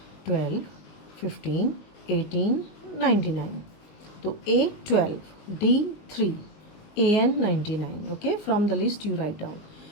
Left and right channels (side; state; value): right; late; 19 ms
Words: 12, 15, 18, 99. So A 12, D 3, AN 99. Okay, from the list you write down.